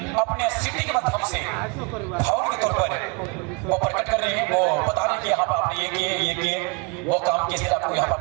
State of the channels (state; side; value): quieter; left; 31.3 dB